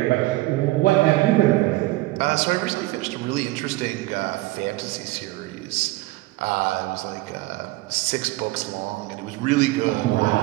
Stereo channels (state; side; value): quieter; left; 19.5 dB